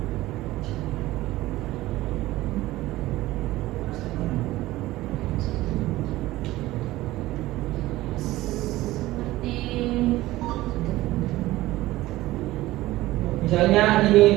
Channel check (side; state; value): left; quieter; 17.2 dB